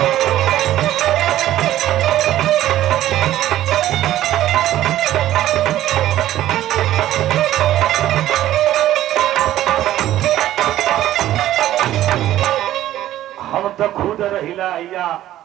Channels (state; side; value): quieter; left; 13.5 dB